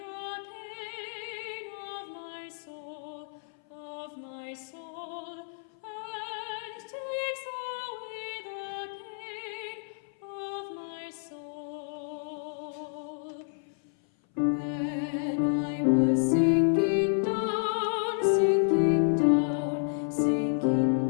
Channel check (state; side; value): silent; right; 58 dB below the other